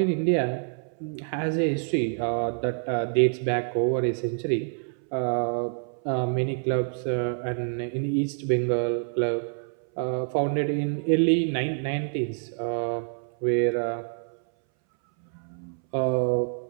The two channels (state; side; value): silent; left; 60 dB below the other